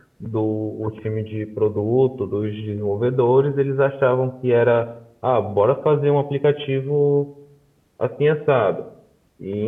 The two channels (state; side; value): identical; both; correlation 1.00